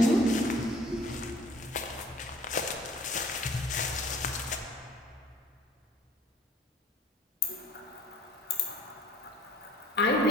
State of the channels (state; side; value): normal; both; correlation 0.51